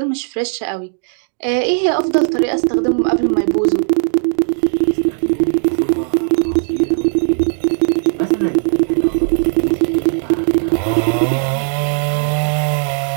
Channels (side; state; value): left; silent; digital silence